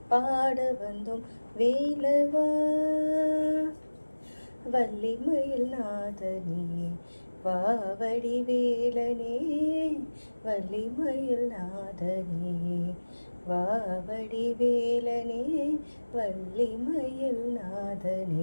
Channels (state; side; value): inverted; both; correlation -1.00